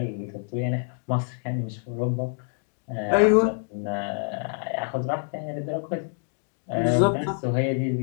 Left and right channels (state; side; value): silent; right; 61 dB below the other